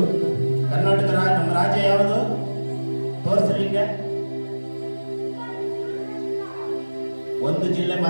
ಕರ್ನಾಟಕ ನಮ್ಮ ರಾಜ್ಯ ಯಾವುದು ತೋರಿಸ್ರಿ. ಹಿಂಗೆ ಒಂದು ಜಿಲ್ಲೆ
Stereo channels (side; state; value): both; inverted; correlation -1.00